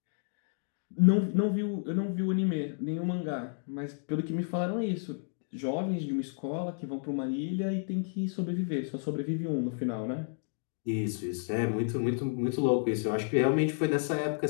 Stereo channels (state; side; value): silent; right; digital silence